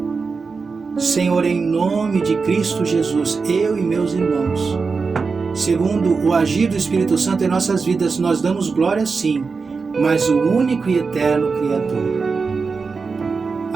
Senhor, em nome de Cristo Jesus, eu e meus irmãos, segundo o agir do Espírito Santo em nossas vidas, nós damos glória sim, mas o único e eterno Criador.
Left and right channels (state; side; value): quieter; left; 4.7 dB